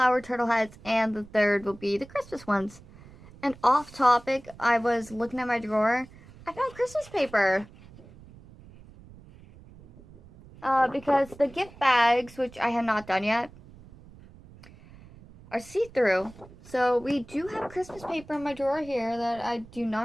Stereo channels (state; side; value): noise; right; rumble, 21 dB below the sound